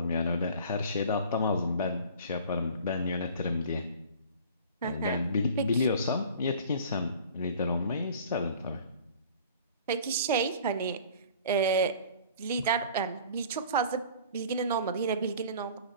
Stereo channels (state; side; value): inverted; both; correlation -0.46